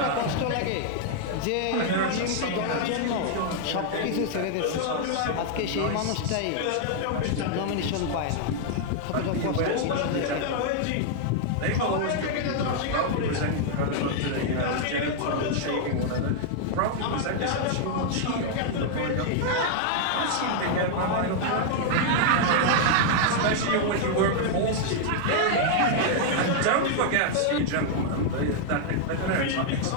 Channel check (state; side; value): different; both; correlation 0.00